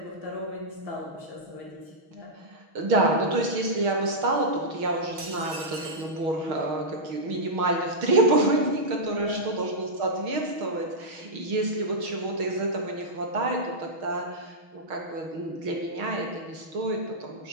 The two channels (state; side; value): late; left; 6.3 ms